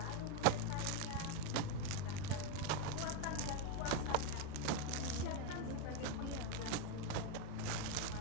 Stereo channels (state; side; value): different; both; correlation 0.02